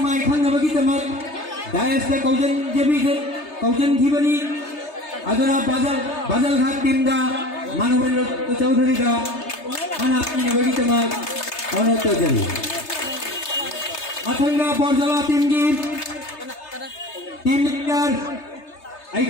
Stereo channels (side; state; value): right; late; 3.3 ms